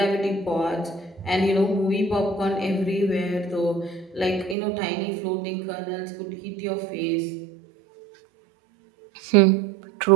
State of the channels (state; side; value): drops out; left; at 4.5 s